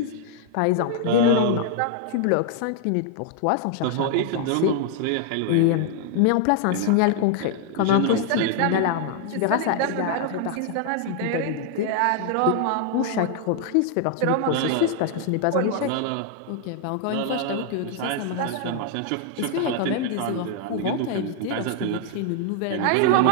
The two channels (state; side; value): different; both; correlation 0.00